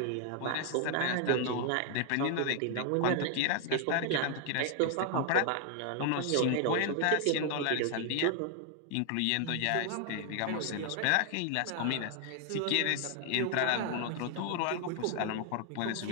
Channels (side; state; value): both; different; correlation 0.00